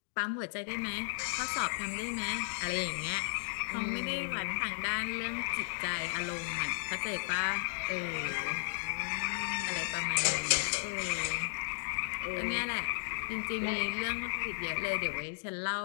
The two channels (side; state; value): right; silent; digital silence